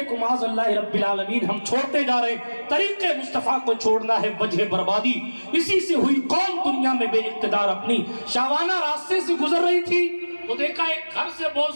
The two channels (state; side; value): inverted; both; correlation -1.00